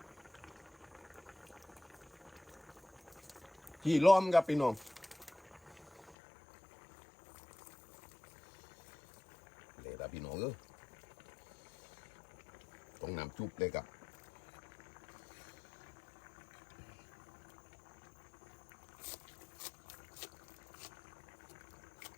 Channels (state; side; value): drops out; right; at 6.2 s